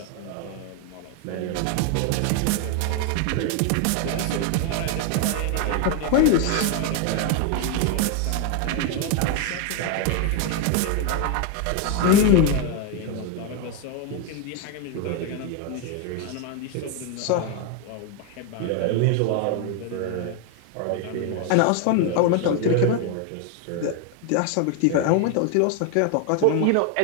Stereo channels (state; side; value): different; both; correlation 0.01